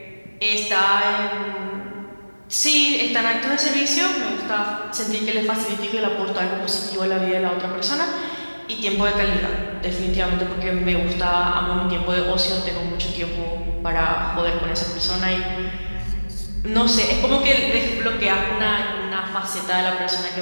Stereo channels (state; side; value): inverted; both; correlation -1.00